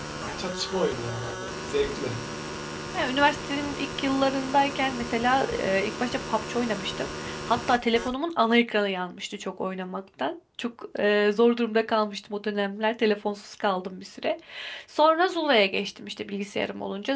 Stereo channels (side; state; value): both; identical; correlation 1.00